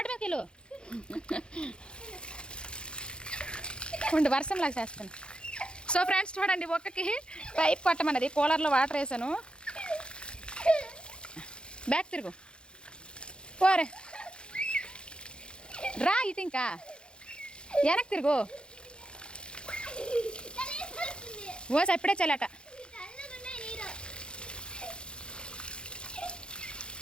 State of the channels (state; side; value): late; right; 0.052 ms